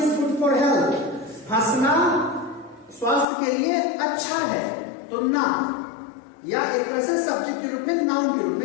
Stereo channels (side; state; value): right; drops out; at 3.2 s